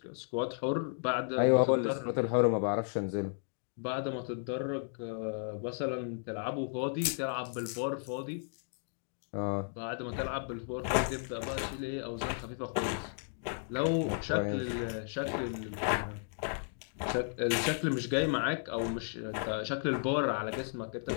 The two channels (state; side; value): silent; right; digital silence